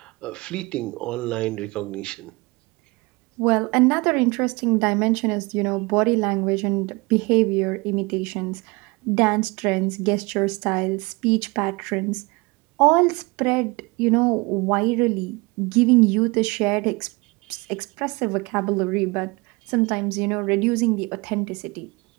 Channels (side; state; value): left; quieter; 25.4 dB